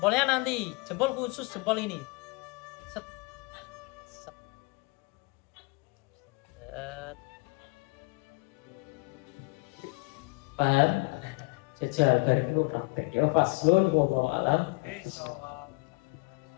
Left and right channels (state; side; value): quieter; right; 28.7 dB